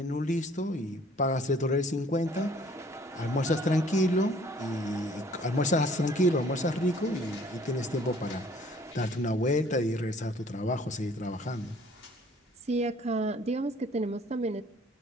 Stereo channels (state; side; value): normal; both; correlation 0.57